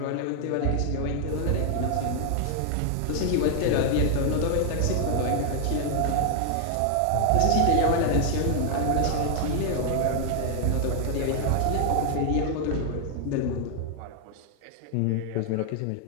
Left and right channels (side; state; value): both; different; correlation 0.00